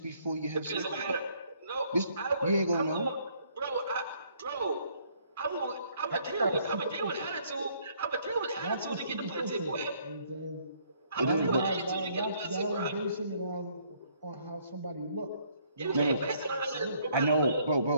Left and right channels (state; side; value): inverted; both; correlation -0.65